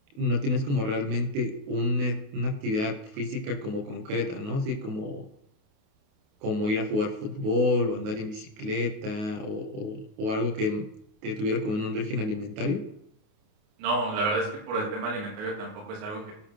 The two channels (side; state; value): left; late; 28 ms